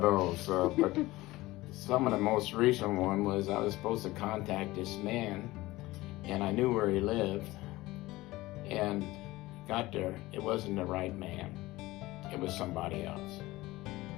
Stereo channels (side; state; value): right; quieter; 18.9 dB